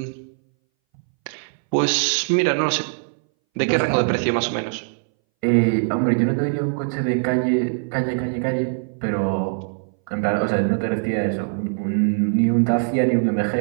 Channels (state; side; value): silent; left; 62 dB below the other